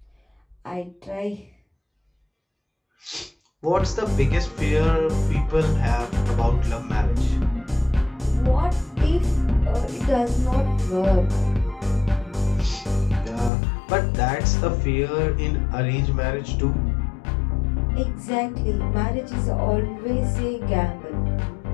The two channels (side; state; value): right; drops out; at 13.5 s